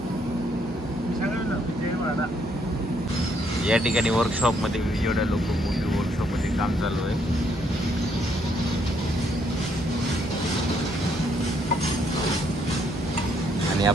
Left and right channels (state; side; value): normal; both; correlation 0.71